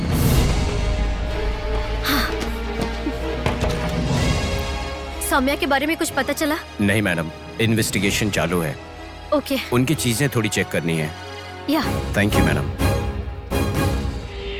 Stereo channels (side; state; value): both; identical; correlation 1.00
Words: सौम्या के बारे में कुछ पता चला? नहीं मैडम, इन्वेस्टिगेशन चालू है। ओके। उनकी चीजें थोड़ी चेक करनी है। Yeah. Thank you madam.